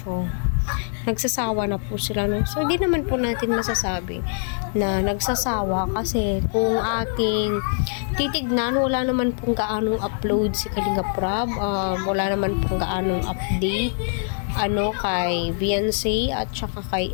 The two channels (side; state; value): right; silent; 63 dB below the other